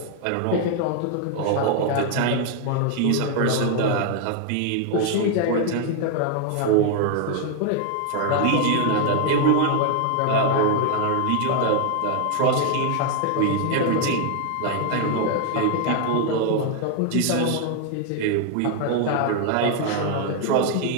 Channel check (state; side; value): different; both; correlation 0.00